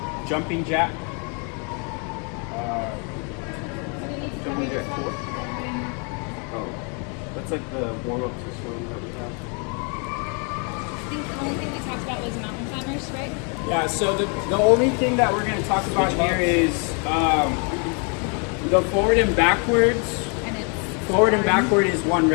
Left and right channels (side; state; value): right; quieter; 36.9 dB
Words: jumping jack. So we need to cover Jumping jack yourself. Oh, that's like the warm up to swing that we have. I think the only thing we talked about was mountain climbers, right? Yeah, so the only thing that we're going to talk about here is the forward and backwards. And it's Forward and backward is 1